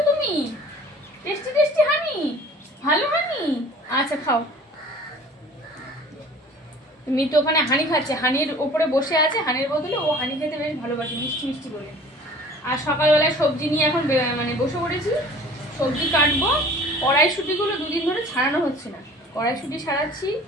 তুমি? টেস্টি টেস্টি হানি, ভালো হানি। আচ্ছা খাও। মিতু ওখানে হানি খাচ্ছে, হানির ওপরে বসে আছে, হানির বদলে ও হানি খেতে বেশ ভালোবাসে, মিষ্টি মিষ্টি বলে। আর সকালবেলায় সবজি নিয়ে এখন মানে বসে পড়েছি, সবজি কাটবো। কড়াইশুঁটিগুলো দুদিন ধরে ছাড়ানো হচ্ছে না, কড়াইশুঁটি ছাড়াচ্ছি।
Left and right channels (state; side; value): normal; both; correlation 0.47